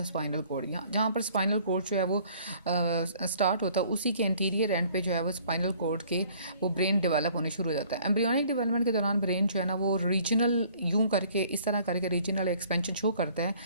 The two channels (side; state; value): both; inverted; correlation -0.56